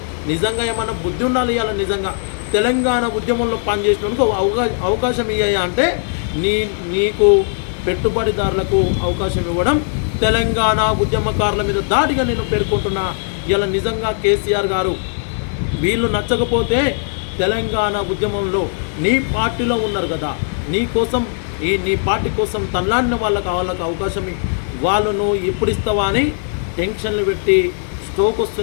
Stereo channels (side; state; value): right; silent; digital silence